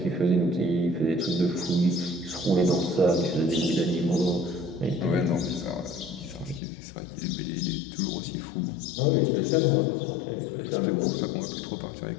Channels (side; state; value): right; drops out; at 6.6 s